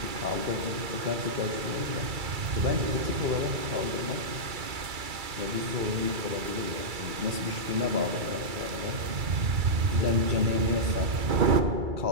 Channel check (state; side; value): late; left; 2.3 ms